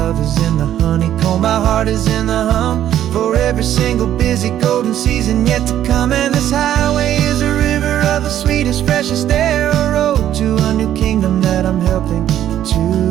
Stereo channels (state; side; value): quieter; left; 11.4 dB